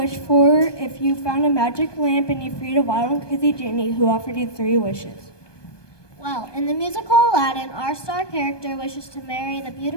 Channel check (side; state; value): right; late; 1.2 ms